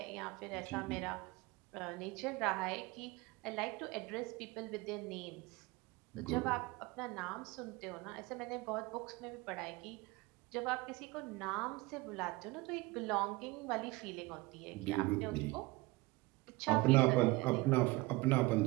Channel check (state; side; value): quieter; left; 22.4 dB